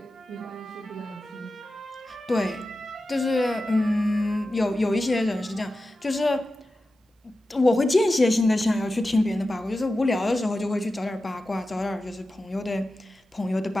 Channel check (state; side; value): normal; both; correlation 0.93